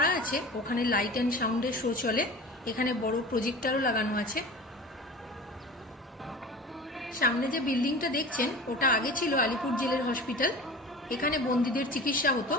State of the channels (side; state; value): both; normal; correlation 0.37